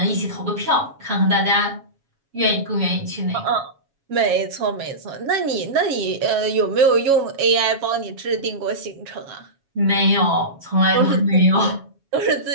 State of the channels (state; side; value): late; left; 7.3 ms